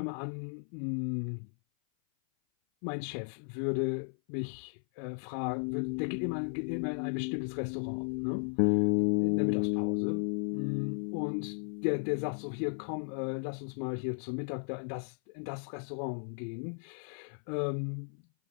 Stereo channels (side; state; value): right; silent; 55 dB below the other